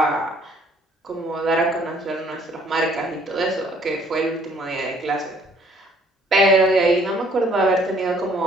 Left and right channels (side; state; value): both; normal; correlation 0.60